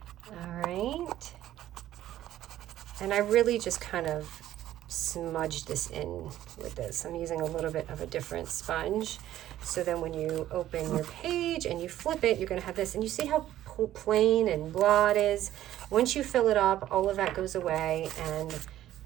right. And I really just kind of smudged this in with this. I'm using a little bit of a different sponge. So then when you open your page and you flip it, you're going to have this. And you see how plain and blah it is? Once you fill it up, all of that goes away. And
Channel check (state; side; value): quieter; left; 13.1 dB